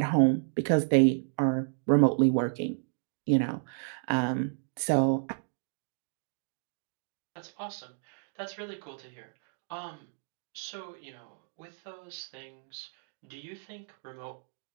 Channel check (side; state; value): left; silent; digital silence